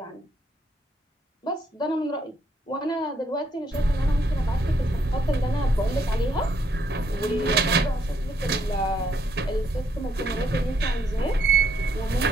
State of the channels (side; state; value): both; normal; correlation 0.72